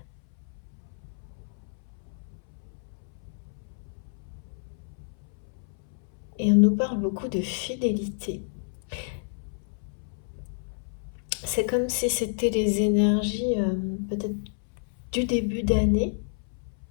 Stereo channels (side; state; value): right; silent; 58 dB below the other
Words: Et on nous parle beaucoup de fidélité. C'est comme si c'était les énergies peut-être du début d'année.